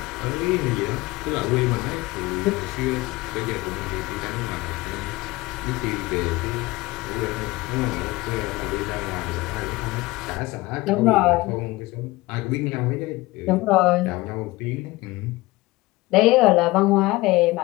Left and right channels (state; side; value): quieter; right; 20.7 dB